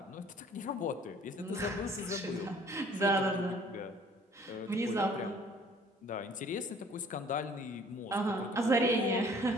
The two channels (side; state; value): both; normal; correlation 0.54